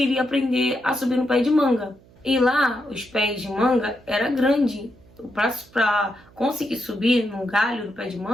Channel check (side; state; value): right; noise; hum, 27 dB below the sound